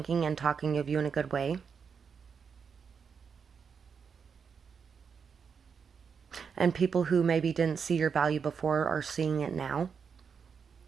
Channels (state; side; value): quieter; left; 6.3 dB